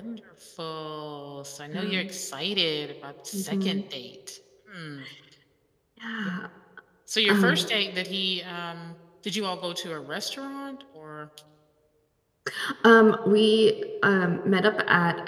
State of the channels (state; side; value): identical; both; correlation 1.00